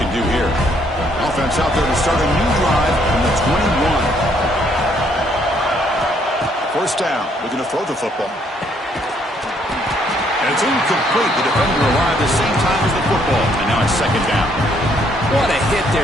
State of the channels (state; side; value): normal; both; correlation 0.68